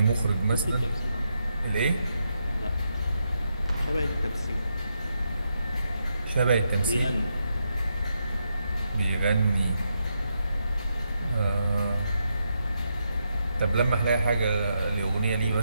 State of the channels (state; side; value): inverted; both; correlation -0.82